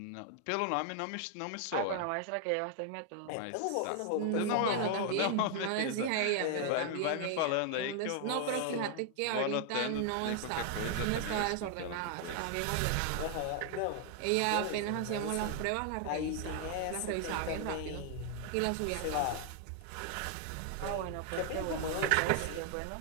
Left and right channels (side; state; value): both; different; correlation 0.00